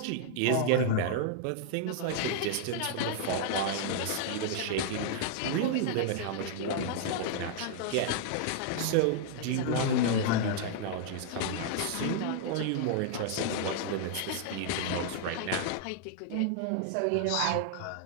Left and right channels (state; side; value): different; both; correlation -0.01